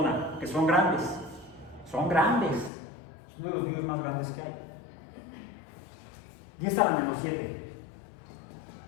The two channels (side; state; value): right; drops out; at 2.7 s